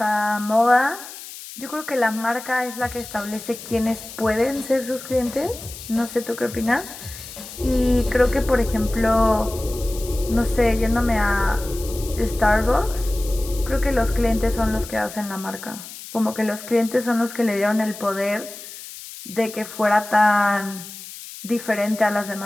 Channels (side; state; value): left; noise; hiss, 13 dB below the sound